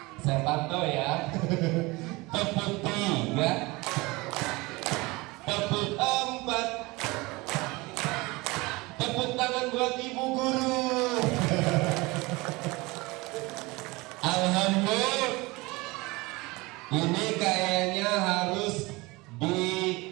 saya pantau ya. Tepuk tiga, tepuk empat, tepuk tangan buat ibu guru. Alhamdulillah, ini kayaknya harus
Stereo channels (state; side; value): quieter; left; 23.3 dB